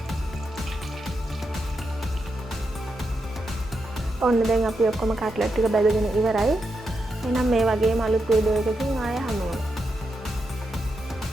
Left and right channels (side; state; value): both; normal; correlation 0.85